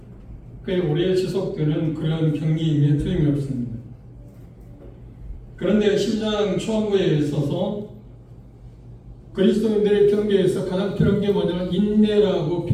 꽤 오래 지속되는 그런 경기임에 틀림이 없습니다. 그런데 12장 초반부에 있어서 그리스도인들의 경계에서 가장 필요한 게 뭐냐면 인내라고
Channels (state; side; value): identical; both; correlation 1.00